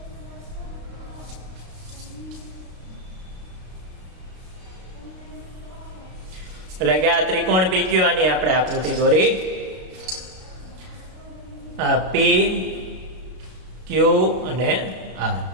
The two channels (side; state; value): left; late; 32 ms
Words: એટલે કે આ ત્રિકોણ PQR ની આપણે આકૃતિ દોરી. આ P, Q અને R.